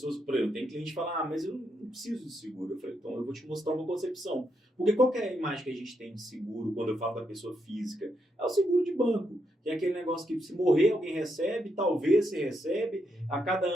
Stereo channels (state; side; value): normal; both; correlation 0.80